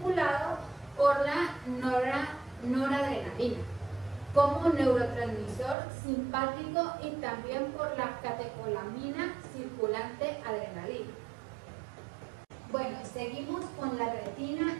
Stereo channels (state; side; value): drops out; left; at 5.8 s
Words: por la noradrenalina como neurotransmisor simpático y también por la catecolamina circulante adrenalina. Bueno, seguimos con la retina